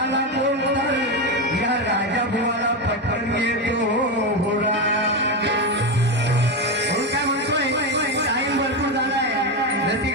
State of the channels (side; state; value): both; normal; correlation 0.12